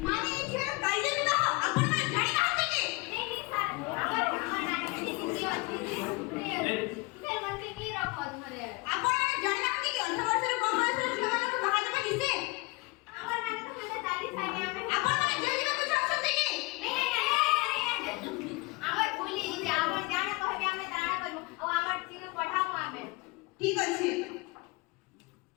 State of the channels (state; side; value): quieter; right; 25.3 dB